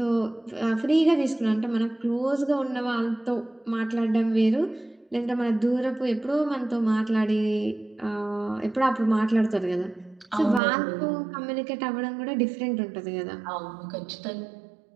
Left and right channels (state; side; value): drops out; left; at 10.6 s